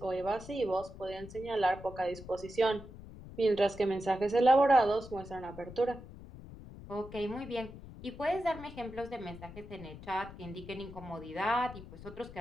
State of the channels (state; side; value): noise; left; rumble, 15 dB below the sound